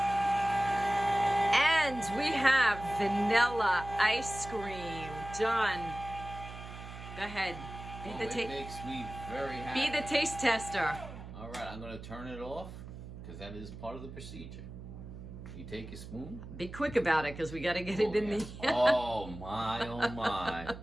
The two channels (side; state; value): right; noise; hum, 12 dB below the sound